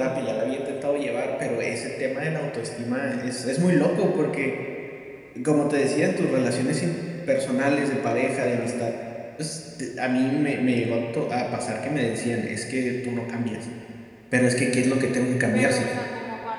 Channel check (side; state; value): both; identical; correlation 1.00